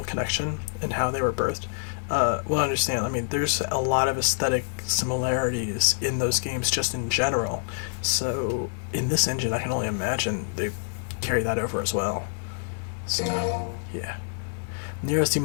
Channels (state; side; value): silent; right; digital silence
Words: connection and how they were birthed, will understand. I mean, there's a lot of aesthetic similarities in those games just in general. So, in this engine, I can only imagine they carry that over as well. So, yeah. Nero's